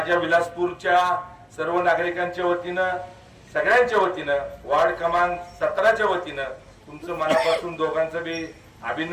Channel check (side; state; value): both; identical; correlation 1.00